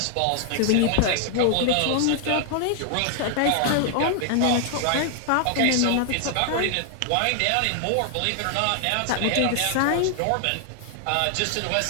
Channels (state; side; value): different; both; correlation 0.00